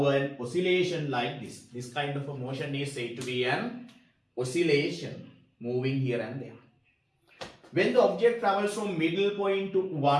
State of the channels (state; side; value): identical; both; correlation 1.00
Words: an oscillation like this. This kind of a motion is said to be an oscillation, moving here and there. When the object travels from middle point to